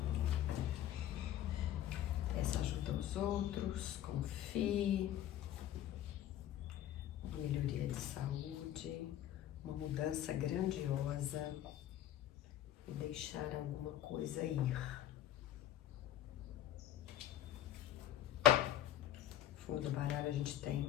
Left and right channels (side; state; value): right; quieter; 12.2 dB